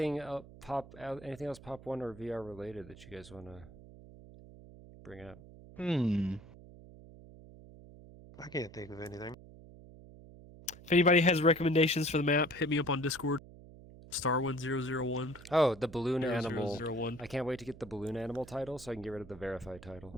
else Pop 1 or VR related that you guys want to bring up? I can't think of anything. If anybody has recommendations for the map, hit me up on Discord. StarwindVR. Oh, the balloon animal. 0001. I can't wait to get the balloon animal title so I can get rid of the verified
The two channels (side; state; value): right; noise; hum, 19 dB below the sound